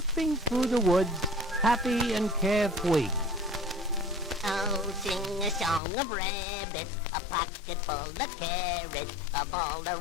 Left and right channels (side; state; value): right; drops out; at 5.8 s